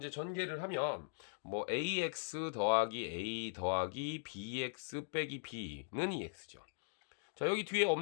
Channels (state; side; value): silent; right; digital silence